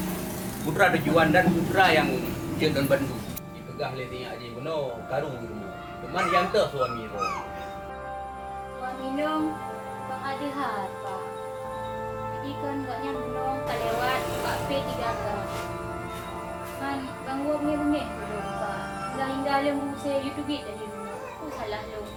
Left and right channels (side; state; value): both; identical; correlation 1.00